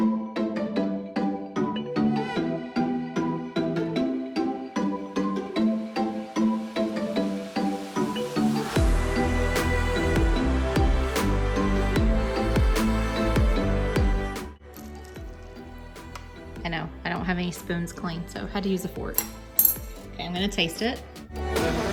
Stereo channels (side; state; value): both; identical; correlation 1.00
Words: I know, I don't have any spoons clean, so I had to use a fork. Okay, I'm gonna taste it.